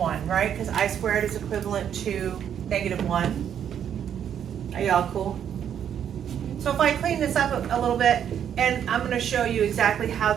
right? Because I squared is equivalent to negative 1. Are y'all cool? So if I clean this up a little bit, and I'm going to show you exactly how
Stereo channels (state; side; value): quieter; left; 9.1 dB